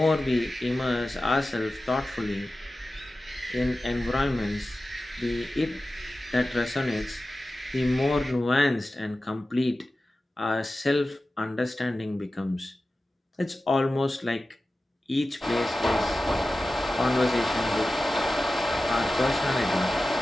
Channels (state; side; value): normal; both; correlation 0.95